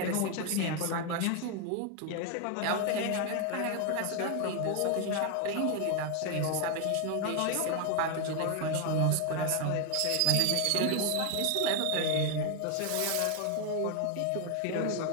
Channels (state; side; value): different; both; correlation 0.01